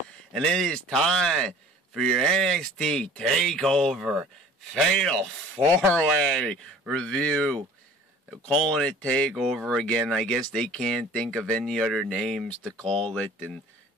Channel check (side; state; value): both; normal; correlation 0.48